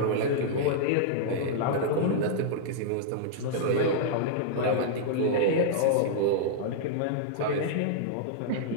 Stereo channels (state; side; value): different; both; correlation -0.01